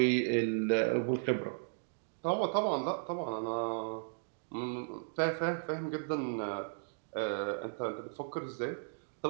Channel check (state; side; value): silent; left; digital silence